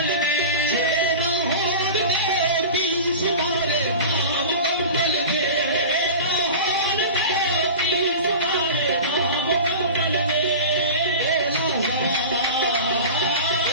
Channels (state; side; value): inverted; both; correlation -0.32